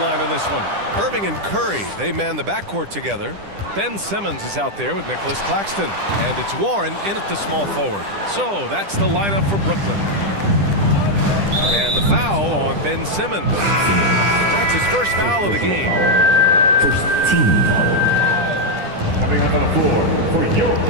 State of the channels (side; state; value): left; late; 10 ms